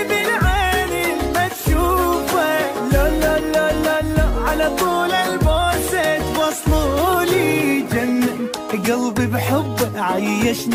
بالعين ما تشوفه، لا لا لا لا لا على طول البوسة توصلولي. جنن قلبي بحبه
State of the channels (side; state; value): both; identical; correlation 1.00